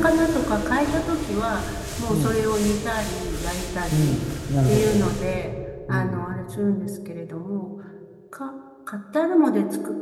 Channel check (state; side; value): identical; both; correlation 1.00